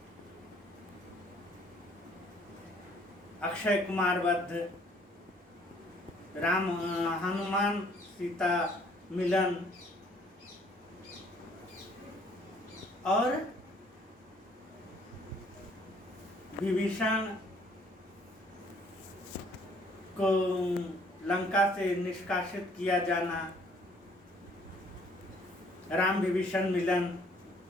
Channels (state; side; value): normal; both; correlation 0.61